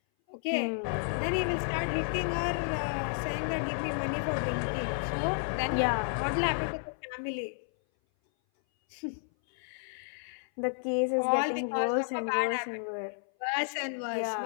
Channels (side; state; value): right; silent; 57 dB below the other